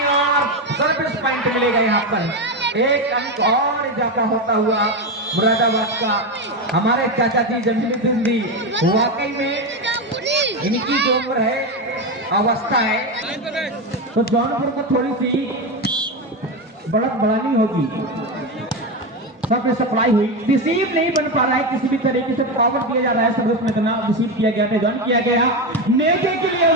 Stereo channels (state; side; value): normal; both; correlation 0.14